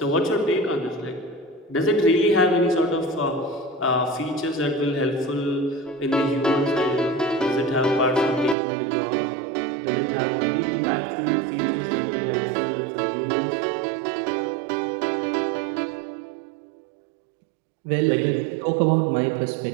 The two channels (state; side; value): drops out; left; at 8.6 s